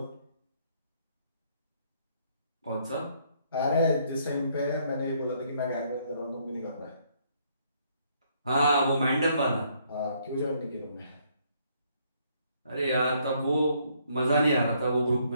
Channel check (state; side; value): inverted; both; correlation -0.68